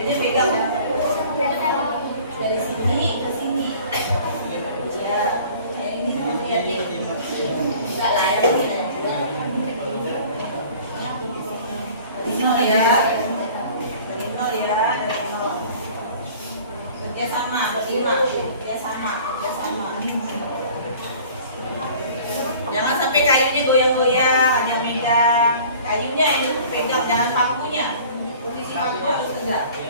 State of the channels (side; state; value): both; inverted; correlation -0.47